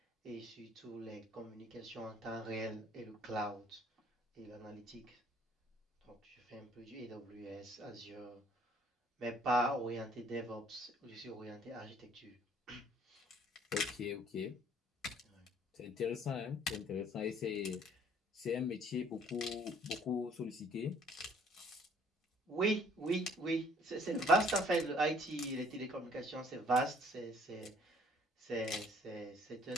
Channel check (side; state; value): both; normal; correlation 0.59